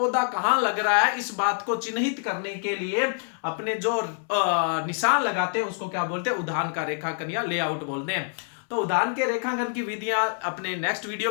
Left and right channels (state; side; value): silent; right; 61 dB below the other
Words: कहां लग रहा है, इस बात को चिन्हित करने के लिए अपने जो निशान लगाते हैं उसको क्या बोलते हैं, उदाहरण का रेखांकन या लेआउट बोलते हैं। तो उदाहरण के रेखांकन की विधियां अपने नेक्स्ट वीडियो